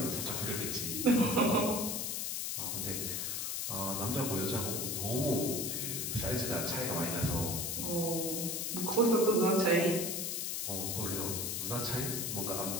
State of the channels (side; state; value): left; noise; hiss, 1 dB below the sound